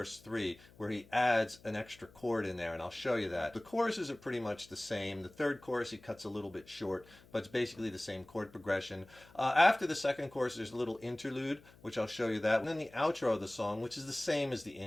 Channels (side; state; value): left; noise; hum, 24 dB below the sound